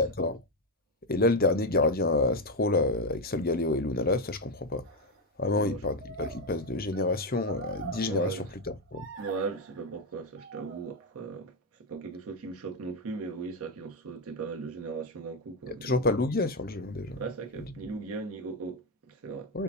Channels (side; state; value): both; normal; correlation 0.07